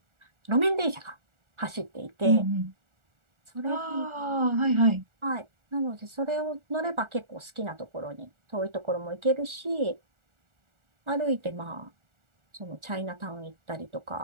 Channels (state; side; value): late; left; 1.4 ms